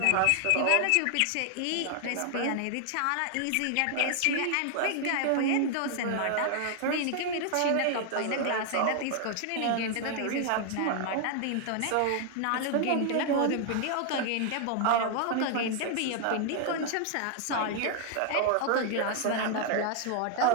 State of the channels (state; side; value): different; both; correlation 0.00